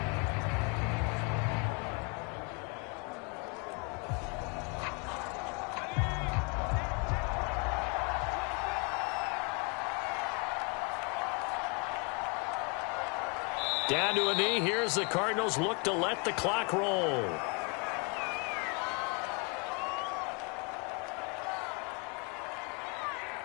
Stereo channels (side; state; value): right; quieter; 33.3 dB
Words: Down to a knee. Here's the Cardinals look to let the clock roll.